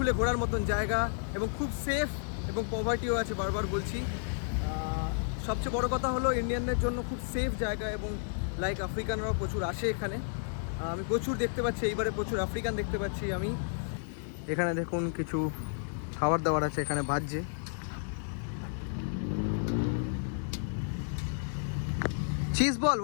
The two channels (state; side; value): silent; right; digital silence